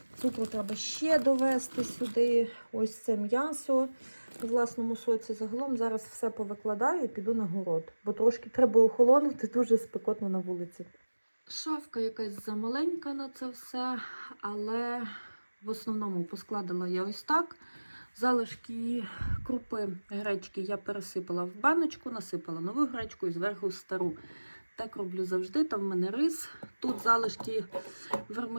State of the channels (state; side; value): inverted; both; correlation -1.00